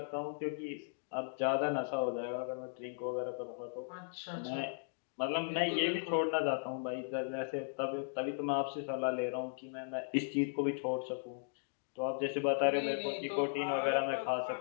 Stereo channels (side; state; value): right; silent; digital silence